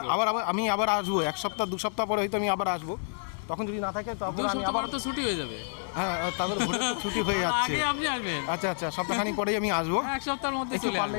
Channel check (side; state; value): right; silent; digital silence